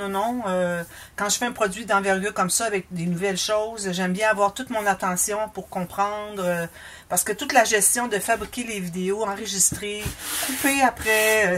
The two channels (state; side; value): identical; both; correlation 1.00